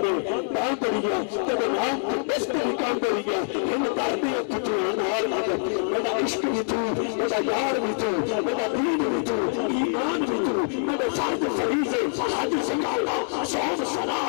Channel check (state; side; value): silent; right; 62 dB below the other